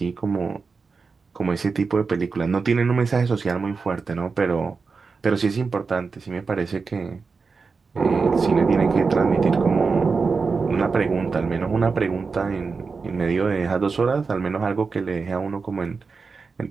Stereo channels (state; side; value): quieter; left; 4.7 dB